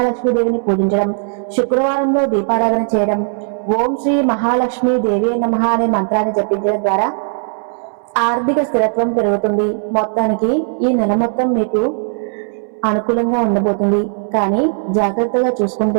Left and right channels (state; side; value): silent; left; 66 dB below the other